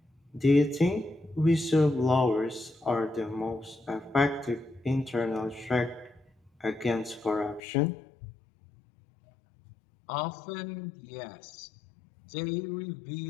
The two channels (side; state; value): right; drops out; at 7.6 s